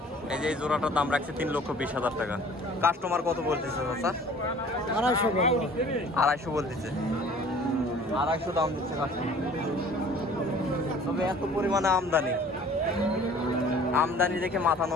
এই যে এই জোড়াটার দাম রাখছে 3,20,000 টাকা। কাস্টমার কত বলতেছে চাচা? 250 বলবো। 250 বলতেছে, 250 দাম দিচ্ছে কাস্টমার। তবে এত পরিমাণে আমদানি, আমদানি দেখে মাথা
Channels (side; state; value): both; normal; correlation 0.50